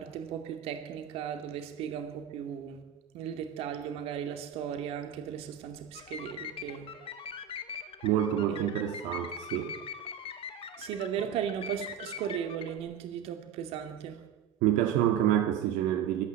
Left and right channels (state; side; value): quieter; left; 8.8 dB